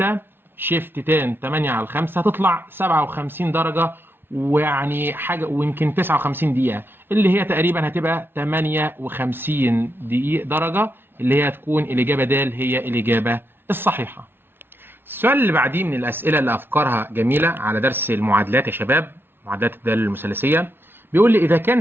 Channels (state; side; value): late; left; 0.11 ms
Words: شيفت تان 8 على 5 هتطلع 57 درجه، ويعني حاجه ويمكن 59 دقيقه، اللي هي تقريبا هتبقى 58 دقيقه درجه، اللي هي هتكون الاجابه د هي الاجابه الصحيحه. السؤال اللي بعديه من الاسئله اللي افكارها جميله على درس المعادلات يا شباب، معادلات الداله المثلثيه. بيقول لي اذا كان